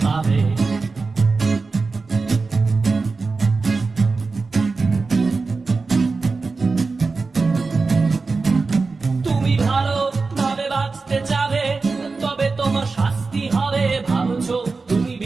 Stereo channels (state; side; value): quieter; left; 4.1 dB